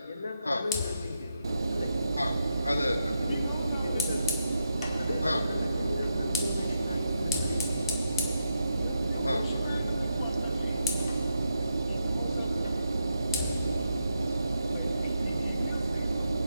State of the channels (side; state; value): both; inverted; correlation -0.83